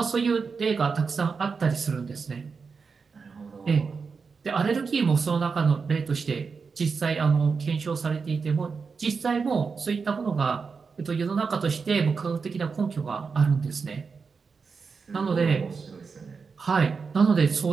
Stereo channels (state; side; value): quieter; left; 5.2 dB